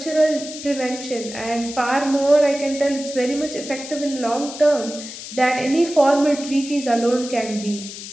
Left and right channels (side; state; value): left; noise; hiss, 11 dB below the sound